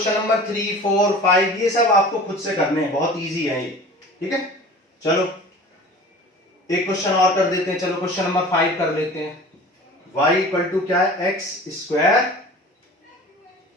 नंबर 3, 4, 5 ये सब आपको खुद से करने हैं, बहुत इजी है ये, ठीक है। चलो एक क्वेश्चन और कर देते हैं, चलो क्वेश्चन नंबर 5 कर लेते हैं। y इक्वल टू क्या है x²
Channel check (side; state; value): both; normal; correlation 0.41